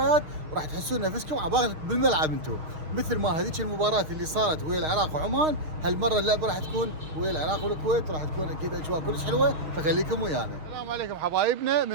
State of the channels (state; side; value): late; left; 6.4 ms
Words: وراح تحسون نفسكم عبالك بالملعب انتم، مثل ما هذيك المباراه اللي صارت ويا العراق وعمان. هالمره اللعبه راح تكون ويا العراق والكويت، وراح تكون اكيد اجواء كلش حلوه، فخليكم ويانا. السلام عليكم حبايبنا،